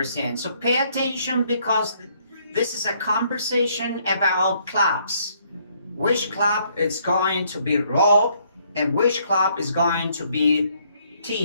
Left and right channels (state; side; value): inverted; both; correlation -0.68